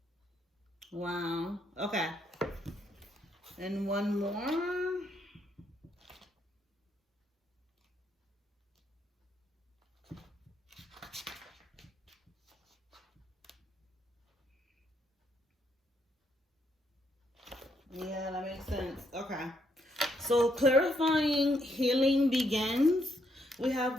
Wow. Okay. And one more. Yeah, that makes sense. Okay. So clarifying healing begins. We have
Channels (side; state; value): both; normal; correlation 0.75